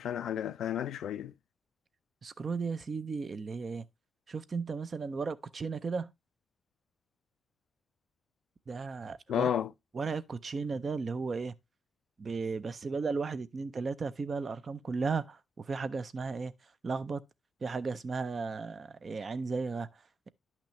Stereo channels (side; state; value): both; normal; correlation 0.80